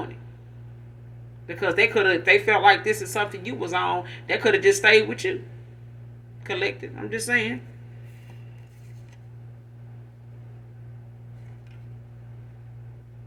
it. Because they could have, if they felt like this is something you was on, they could have just stayed with you. Collected. I'm just saying.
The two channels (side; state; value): both; identical; correlation 1.00